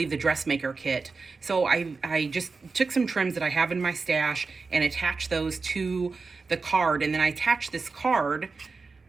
the Dressmaker kit. So I just took some trims that I have in my stash and attached those to the card. And then I attached this card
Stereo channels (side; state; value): left; quieter; 4.3 dB